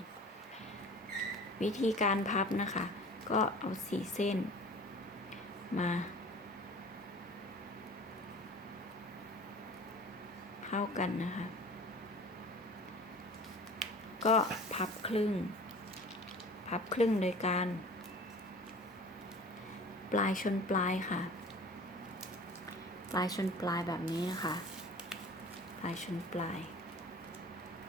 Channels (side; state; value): both; normal; correlation 0.42